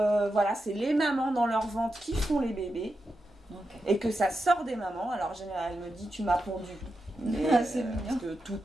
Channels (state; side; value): normal; both; correlation 0.88